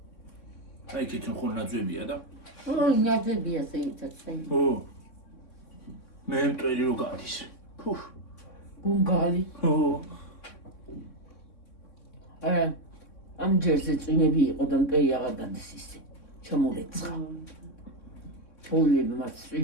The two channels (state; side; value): late; right; 3.6 ms